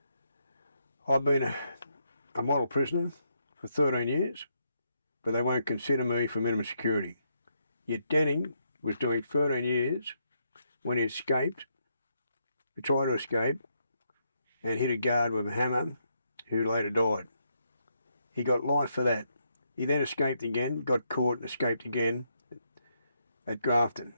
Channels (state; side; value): inverted; both; correlation -0.78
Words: I've been a model prisoner for 13 years, but they won't consider me for minimum security. Yet Denning was doing 13 years when he escaped, he tried to escape, and hit a guard with a hammer who later died. He got life for that. He then escaped again, got caught and escaped again at Grafton